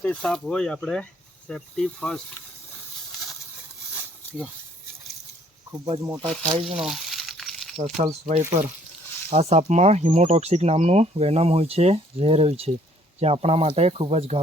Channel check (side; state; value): both; normal; correlation 0.61